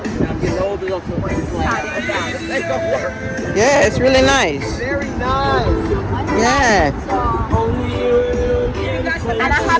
I'm getting older, so it's like, they don't work. Yeah, it's really nice. Very nice. Yeah. And I have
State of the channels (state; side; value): identical; both; correlation 1.00